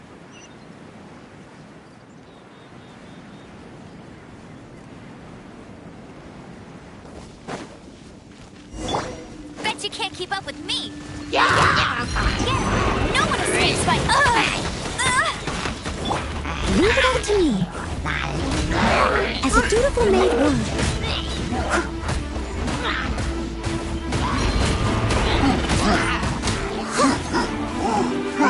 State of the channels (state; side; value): identical; both; correlation 1.00